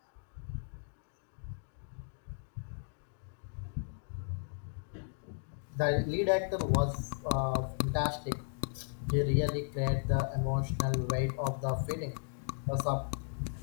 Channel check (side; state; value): right; silent; digital silence